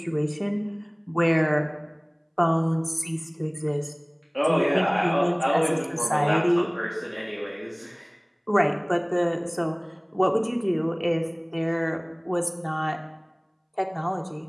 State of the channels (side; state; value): both; identical; correlation 1.00